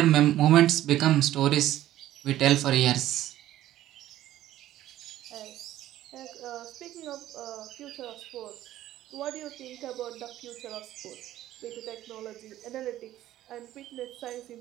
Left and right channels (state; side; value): quieter; left; 13.6 dB